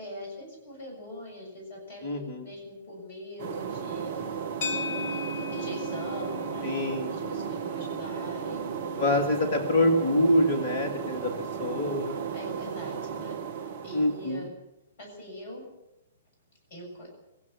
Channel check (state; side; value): inverted; both; correlation -0.56